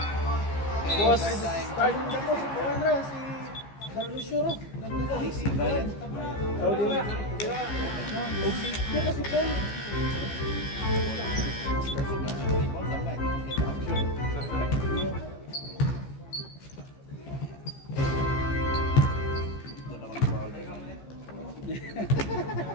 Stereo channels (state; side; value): late; right; 15 ms